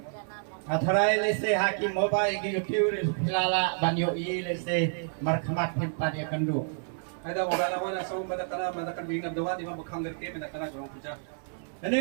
Atharai lese hakim moba igi YouTube filala banyo i lese markhamat himpa dia kandu. Ada mogala wana sa madakan bingad doha di mabakhangar ke madakan grong puja.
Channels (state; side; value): silent; left; 58 dB below the other